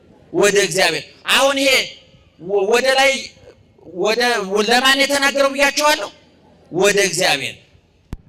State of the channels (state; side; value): identical; both; correlation 1.00